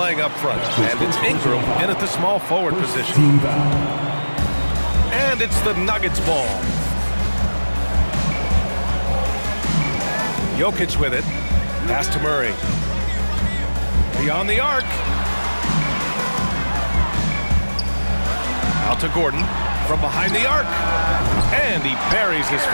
up front. And it's Ingram in at the small forward position. And it's the Nuggets ball. Jokic with it. Pass to Murray. Beyond the arc. Out to Gordon. From behind the arc. And he buries his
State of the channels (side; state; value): both; inverted; correlation -1.00